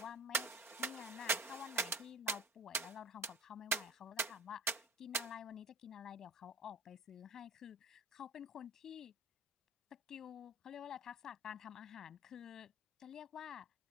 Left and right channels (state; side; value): normal; both; correlation 0.39